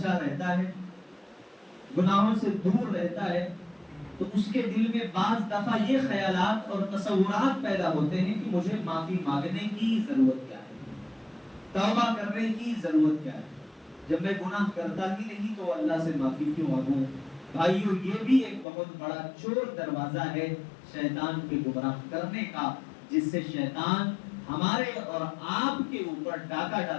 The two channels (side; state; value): right; drops out; at 18.7 s